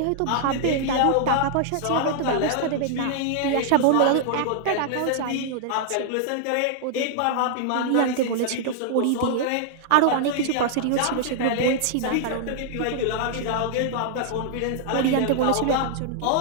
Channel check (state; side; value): different; both; correlation -0.01